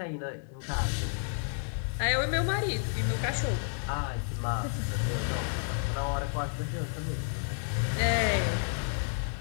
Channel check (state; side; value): silent; right; digital silence